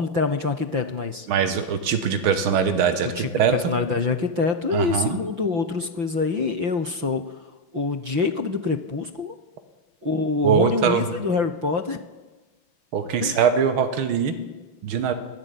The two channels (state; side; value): late; left; 5.9 ms